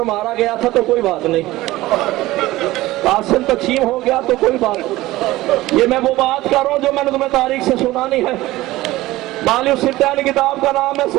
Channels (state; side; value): quieter; left; 17.6 dB